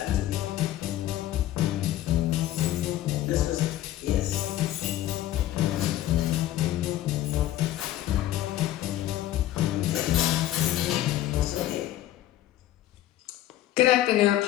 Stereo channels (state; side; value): quieter; right; 13.7 dB